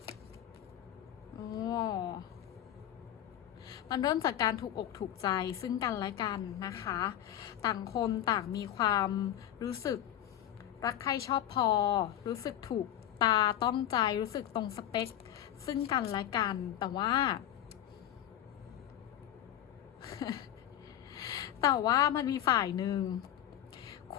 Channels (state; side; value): quieter; right; 11.7 dB